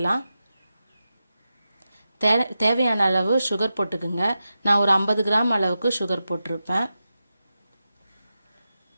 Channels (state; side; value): inverted; both; correlation -0.91